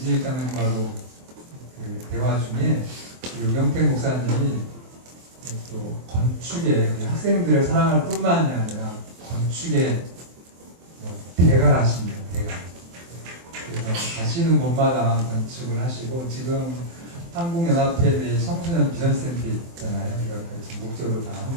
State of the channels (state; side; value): late; left; 23 ms